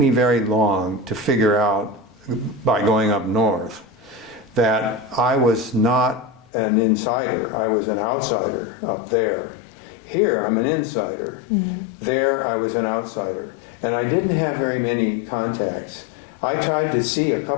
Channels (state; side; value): drops out; right; at 6.5 s